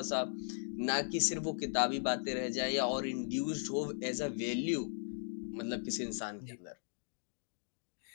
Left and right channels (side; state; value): right; silent; digital silence